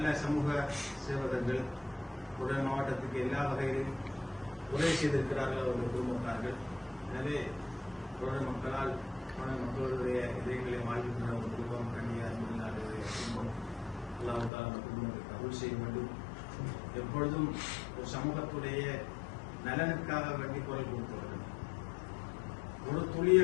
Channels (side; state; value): right; drops out; at 14.5 s